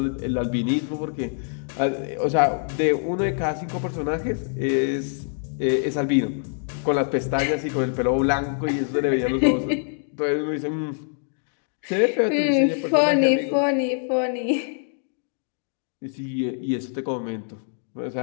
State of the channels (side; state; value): right; silent; digital silence